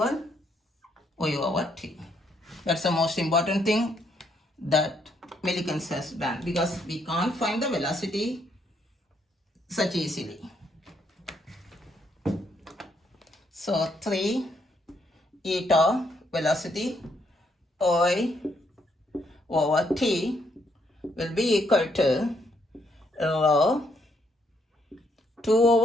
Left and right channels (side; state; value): both; normal; correlation 0.73